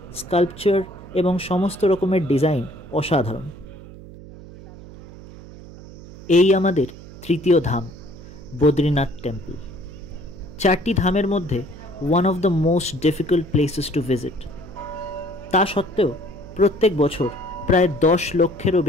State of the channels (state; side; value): noise; right; hum, 17 dB below the sound